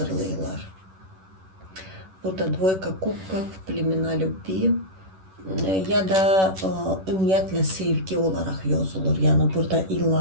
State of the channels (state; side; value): late; left; 11 ms